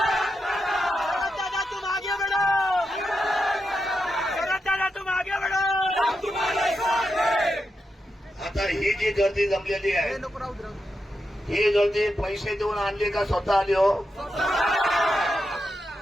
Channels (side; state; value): both; normal; correlation 0.86